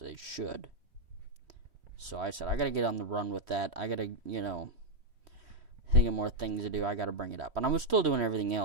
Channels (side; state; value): left; late; 3.1 ms